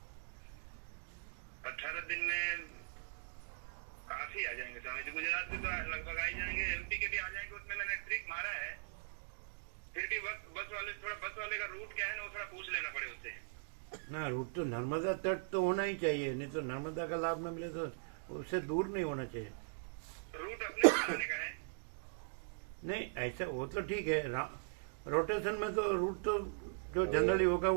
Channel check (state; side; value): silent; left; digital silence